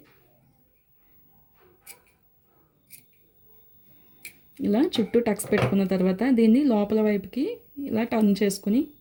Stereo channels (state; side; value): identical; both; correlation 1.00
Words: ఇలా చుట్టూ టక్స్ పెట్టుకున్న తర్వాత దీన్ని లోపల వైపుకి ఇలా టర్న్ చేసుకుని